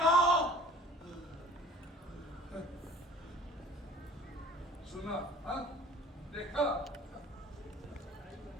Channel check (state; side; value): normal; both; correlation 0.47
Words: सुना? हाँ? देखा?